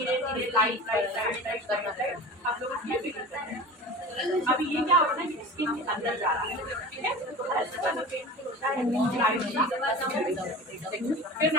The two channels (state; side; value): normal; both; correlation 0.35